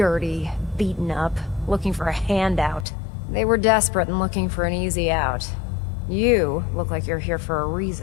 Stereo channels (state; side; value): drops out; right; at 2.9 s